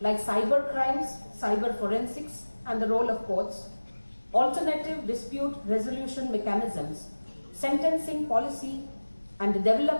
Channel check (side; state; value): both; inverted; correlation -1.00